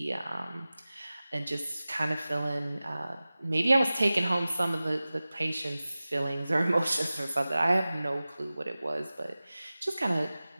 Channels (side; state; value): both; inverted; correlation -0.97